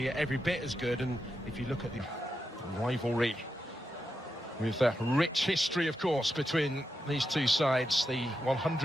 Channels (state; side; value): normal; both; correlation 0.87